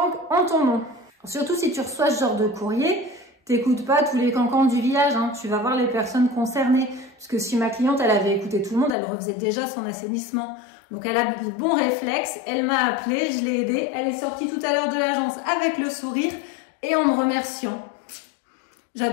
en ton nom. Surtout si tu reçois ce genre de courrier, t'écoutes pas tous les cancans du village, hein. Tu vas voir les personnes concernées. Parce que si ma cliente, elle avait écouté tout le monde, elle refaisait déjà son assainissement. Donc elle a le bon réflexe, elle m'a appelé, je l'ai aidée. Elle est sortie tout à l'heure de l'agence avec le sourire et en me remerciant.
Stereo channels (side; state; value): right; drops out; at 9.0 s